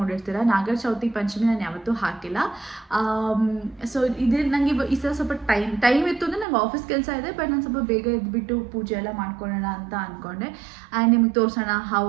ನಾಗರ ಚೌತಿ ಪಂಚಮಿ ನಾನು ಯಾವತ್ತೂ ಹಾಕಿಲ್ಲ. ಸೊ ಇದೇ ನನಗೆ ಈ ಸಲ ಸ್ವಲ್ಪ ಟೈಮ್ ಇತ್ತು ಅಂದರೆ ನಂಗೆ ಆಫೀಸ್ ಕೆಲಸ ಇದೆ. ಬಟ್ ನಾನು ಸ್ವಲ್ಪ ಬೇಗ ಎದ್ಬಿಟ್ಟು ಪೂಜೆ ಎಲ್ಲ ಮಾಡ್ಕೊಳ್ಳೋಣ ಅಂತ ಅಂದ್ಕೊಂಡೆ. ಆ್ಯಂಡ್ ನಿಮ್ಗೆ ತೋರಿಸೋಣ ಹೌ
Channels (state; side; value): drops out; left; at 6.5 s